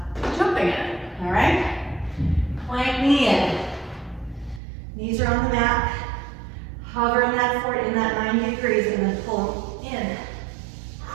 jumping in it, all right? Plank knee in. Knees are on the mat. Hover in that 90 degrees and then pull them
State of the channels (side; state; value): left; drops out; at 4.6 s